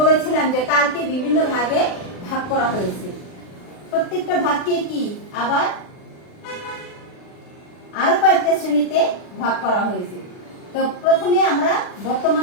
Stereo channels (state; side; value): late; right; 39 ms